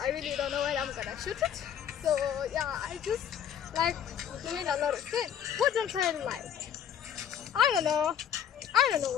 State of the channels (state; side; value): quieter; right; 9.2 dB